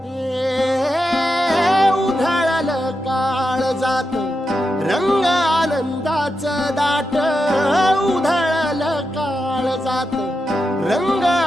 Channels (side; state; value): both; normal; correlation 0.87